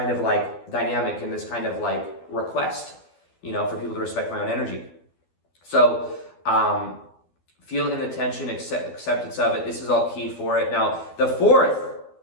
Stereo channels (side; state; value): right; late; 12 ms